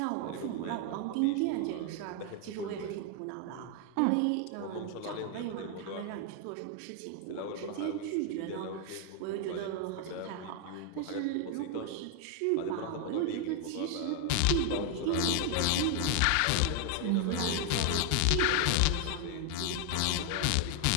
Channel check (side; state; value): both; different; correlation 0.00